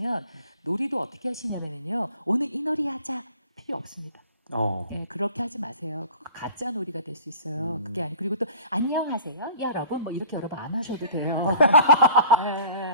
놀이도 어떻게 하시냐면요. 오늘 이 놀이 하자 필요 없습니다. 예, 그렇게 하지 마세요. 그거 가짜 놀이가 될 수 있어요. 그게 아니 그리고 또 안녕하세요, 여러분 뭐 이렇게 여러분 안 하셔도 돼요.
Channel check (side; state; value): both; inverted; correlation -0.46